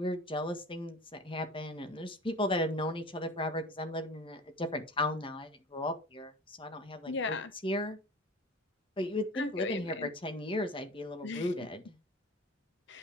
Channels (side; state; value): both; normal; correlation 0.37